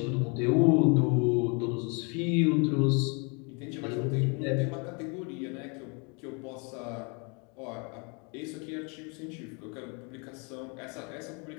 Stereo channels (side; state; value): right; quieter; 33.5 dB